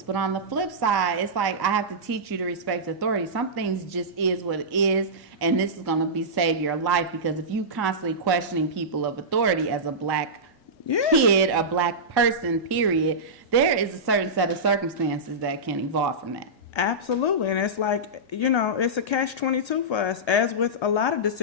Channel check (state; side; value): normal; both; correlation -0.15